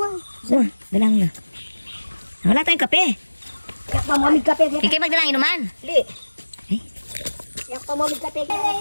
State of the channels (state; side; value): inverted; both; correlation -1.00